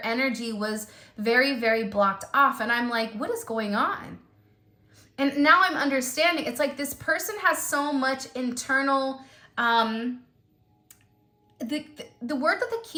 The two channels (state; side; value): identical; both; correlation 1.00